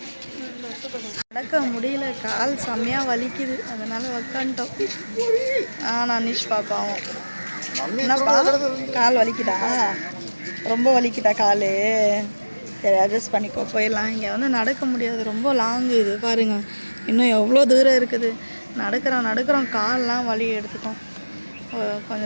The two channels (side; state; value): both; inverted; correlation -1.00